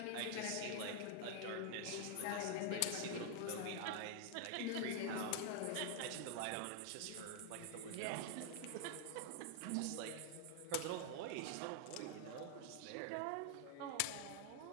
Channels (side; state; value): both; different; correlation 0.00